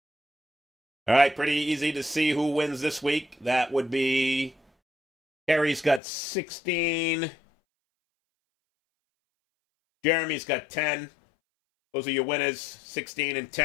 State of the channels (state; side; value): drops out; right; at 6.0 s